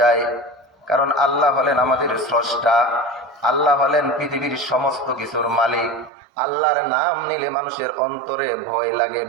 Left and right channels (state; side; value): drops out; left; at 6.1 s